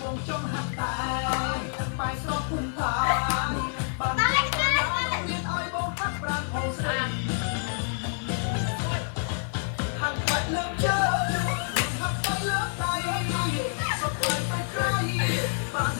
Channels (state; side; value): silent; right; 56 dB below the other